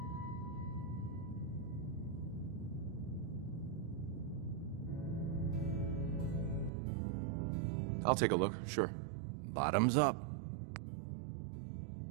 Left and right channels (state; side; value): drops out; left; at 6.7 s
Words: I'll take a look, sure. Bottoms up.